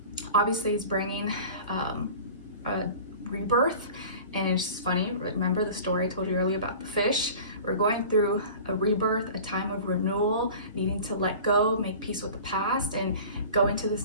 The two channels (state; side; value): inverted; both; correlation -0.40